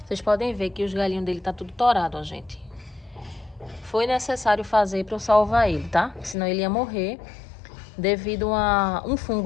Vocês podem ver que os galhinhos dele tá tudo torado, ó, gente. Foi necessário fazer para eu salvar ele, tá? Senão ele ia morrer devido a um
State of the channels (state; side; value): drops out; right; at 6.4 s